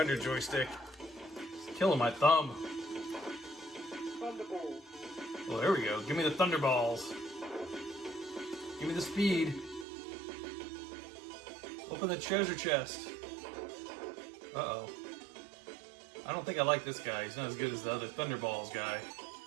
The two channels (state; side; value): drops out; left; at 9.9 s